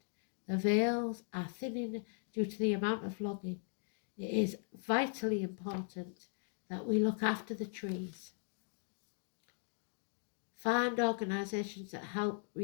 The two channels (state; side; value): silent; right; 52 dB below the other